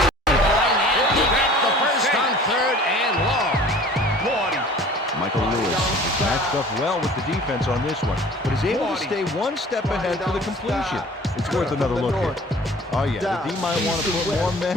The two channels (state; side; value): normal; both; correlation 0.47